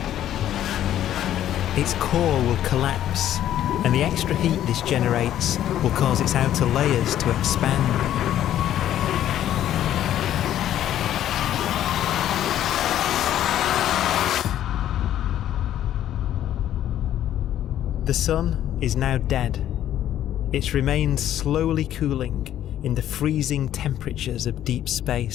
Its core will collapse, and the extra heat this generates will cause its outer layers to expand. The sun is now dead. It remains slowly cooling in the freezing temperatures of deep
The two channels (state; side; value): quieter; right; 11.6 dB